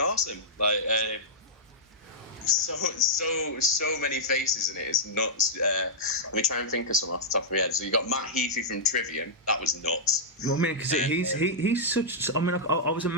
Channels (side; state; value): both; normal; correlation -0.11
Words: Like, so many faces in it. It's nuts. Let me try and think of some off the top of my head. So you got Matt Heafy from Trivium. That was nuts. Well, I mean, because he's such. I mean, I was